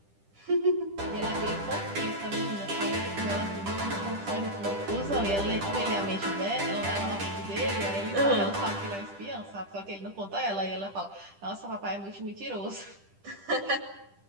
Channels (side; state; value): left; late; 10 ms